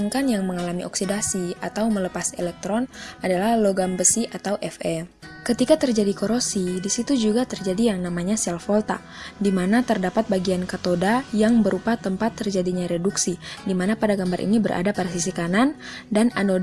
yang mengalami oksidasi atau melepas elektron adalah logam besi atau Fe. Ketika terjadi korosi, di situ juga terjadi yang namanya sel volta, di mana terdapat bagian katoda yang berupa tempat terjadinya reduksi, di mana pada gambar ini berada pada sisi kanan, dan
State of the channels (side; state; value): both; identical; correlation 1.00